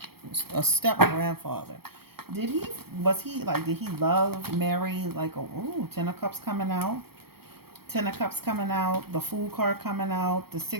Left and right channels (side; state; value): left; late; 0.95 ms